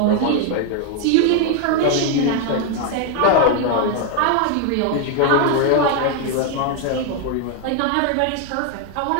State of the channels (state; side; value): different; both; correlation 0.01